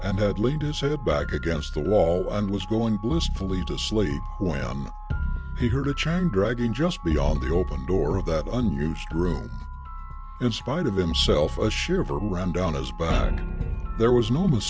and had leaned his head back against the wall and was going blissfully to sleep when he heard a chain dragging just beyond the open door of that unused room. In spite of himself, a shiver ran down his back. There was no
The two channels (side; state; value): both; identical; correlation 1.00